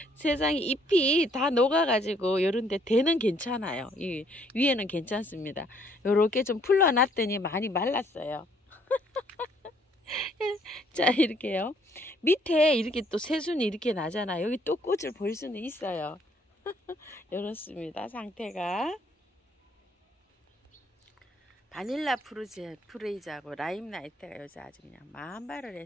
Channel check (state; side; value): normal; both; correlation 0.65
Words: 세상에 잎이 다 녹아가지고 요런데 대는 괜찮아요. 이 위에는 괜찮습니다. 요렇게 좀 풀러놨더니 많이 말랐어요. 자, 이렇게요. 밑에 이렇게 또 새순이 이렇게 나잖아요. 여기 또 꽃을 볼 수는 있어요. 이렇습니다. 상태가. 바닐라 프레이즈하고 라임 나이트가 요새 아주 그냥 만발을